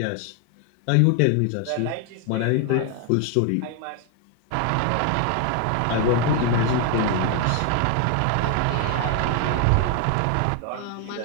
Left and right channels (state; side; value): different; both; correlation 0.00